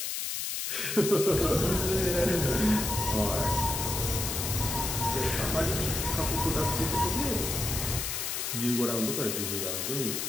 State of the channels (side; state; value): left; noise; hiss, 2 dB below the sound